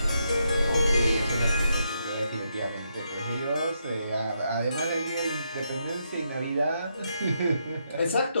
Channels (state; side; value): inverted; both; correlation -0.80